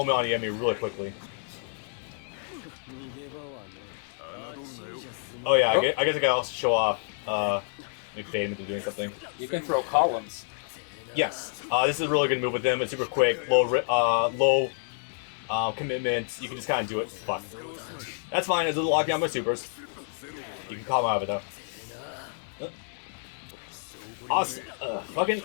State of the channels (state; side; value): silent; right; 58 dB below the other